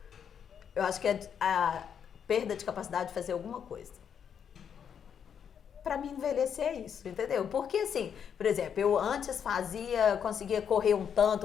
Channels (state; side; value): quieter; right; 7.9 dB